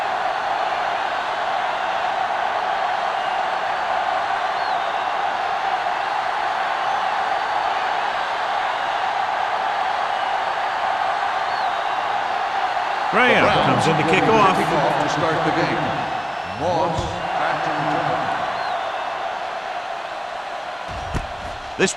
Graham comes in to kick off. To start the game. Moss back to return. This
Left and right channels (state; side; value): identical; both; correlation 1.00